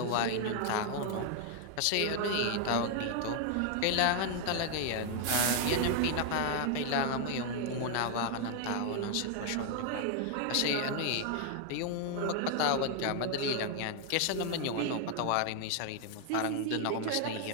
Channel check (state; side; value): different; both; correlation 0.00